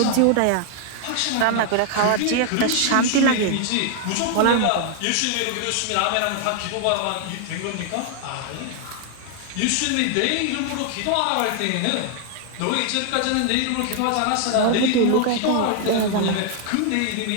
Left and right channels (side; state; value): both; different; correlation 0.00